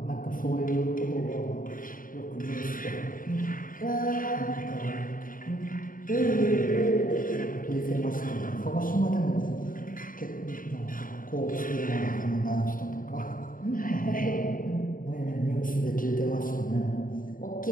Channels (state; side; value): late; right; 0.40 ms